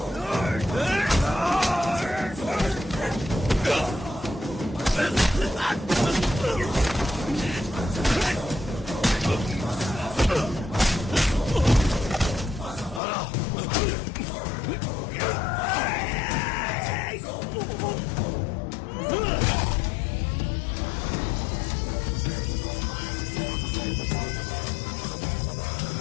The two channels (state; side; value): drops out; right; at 13.0 s